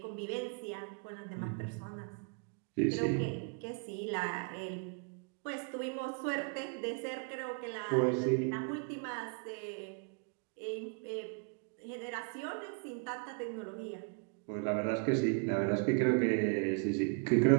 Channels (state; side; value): quieter; left; 38.8 dB